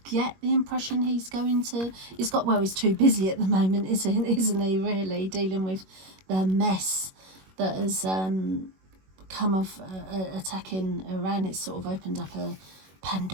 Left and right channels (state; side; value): late; left; 21 ms